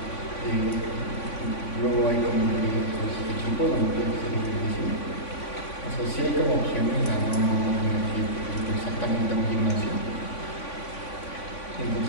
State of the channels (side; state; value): right; late; 3.5 ms